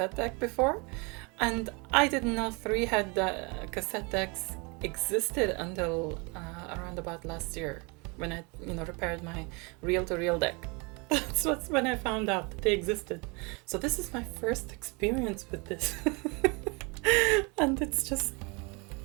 deck before, and I didn't know 3-head cassette decks existed until around about last year when I repaired my reel-to-reel deck. That's when I found out that they existed. So this is my first experience with this. And it's just,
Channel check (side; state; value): left; quieter; 29.9 dB